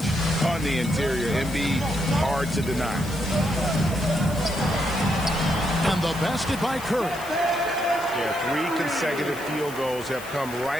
on the interior. Embiid, hard to deny. And the basket by Curry. Yeah, 3 consecutive field goals have come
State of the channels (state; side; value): noise; left; hiss, 16 dB below the sound